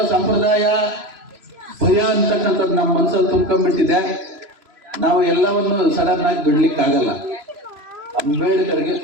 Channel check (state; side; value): late; left; 3.0 ms